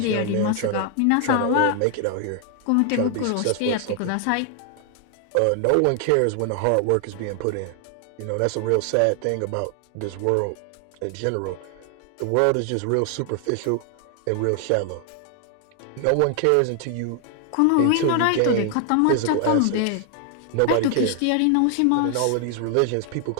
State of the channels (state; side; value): different; both; correlation 0.00